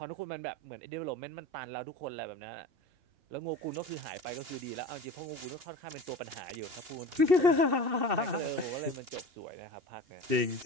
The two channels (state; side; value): late; left; 2.9 ms